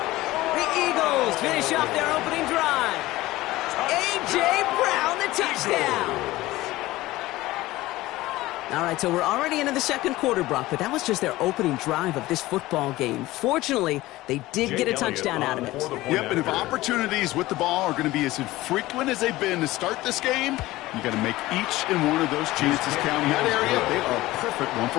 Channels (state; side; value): quieter; right; 17.9 dB